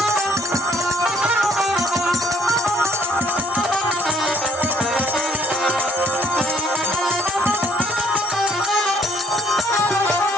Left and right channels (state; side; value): normal; both; correlation 0.65